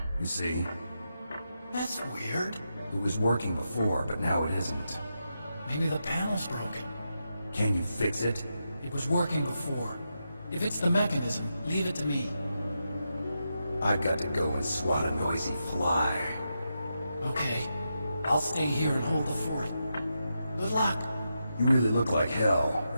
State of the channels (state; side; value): inverted; both; correlation -0.86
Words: You see? That's weird. It was working before, but now it isn't. Maybe the panel's broken. Can you fix it? It was working before. If it's the mechanism, leave it to me. I've got to go and swat a noisy fly. Okay. I'll stay here and hold the fort. Good luck. You really look like hell.